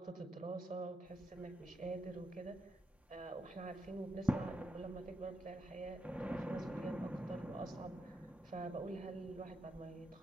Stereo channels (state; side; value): normal; both; correlation 0.83